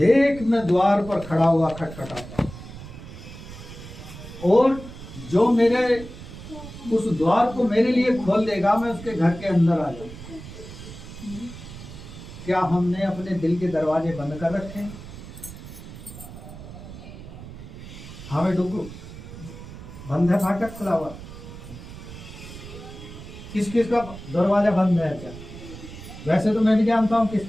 मैं द्वार पर खड़ा हुआ खटखटाता हूँ, और जो मेरे उस द्वार को मेरे लिए खोल देगा मैं उसके घर के अंदर आ जाऊंगा। क्या हमने अपने दिल के दरवाजे बंद कर रखे हैं? हमें डुगू बंद है, फाटक खुला हुआ? किस किस का दरवाजा बंद है? क्या वैसे तो मैं भी जानता हूँ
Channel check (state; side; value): noise; right; rumble, 14 dB below the sound